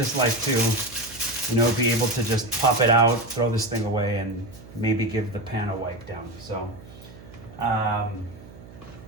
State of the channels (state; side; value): noise; right; hum, 19 dB below the sound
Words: like to, be able to just pop it out, throw this thing away, and maybe give the pan a wipe down. So, I